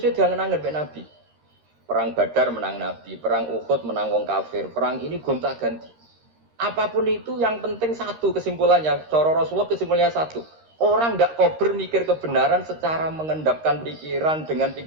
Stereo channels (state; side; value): late; left; 13 ms